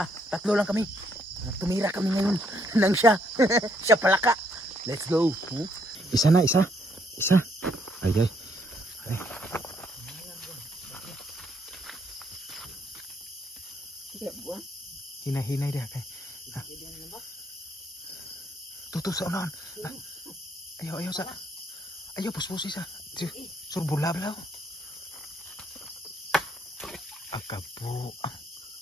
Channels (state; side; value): normal; both; correlation 0.71